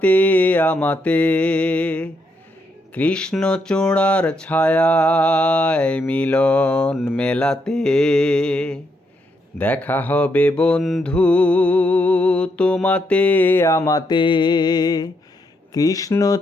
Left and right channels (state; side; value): normal; both; correlation 0.78